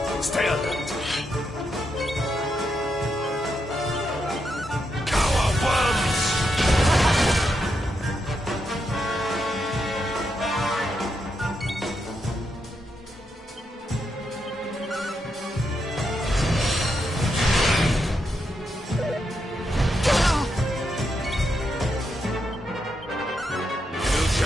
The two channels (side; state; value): both; normal; correlation 0.82